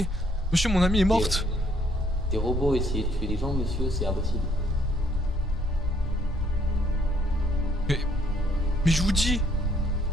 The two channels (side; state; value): both; normal; correlation 0.66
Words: Monsieur, mon amie est morte. Des robots essayer de tuer les gens, monsieur, c'est impossible. Mais je vous dis.